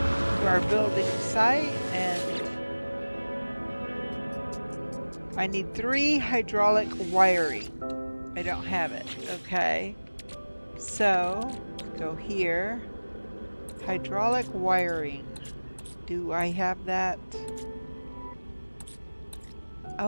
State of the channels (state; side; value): inverted; both; correlation -1.00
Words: to our building site, and I need 3 hydraulic wiring. I don't have it. Okay, so go here. Hydraulic wiring. Do I have that?